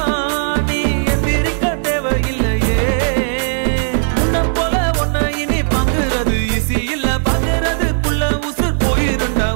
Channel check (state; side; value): silent; left; digital silence